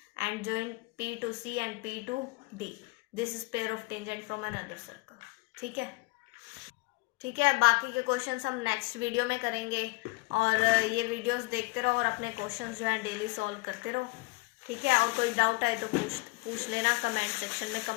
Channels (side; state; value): right; quieter; 25.1 dB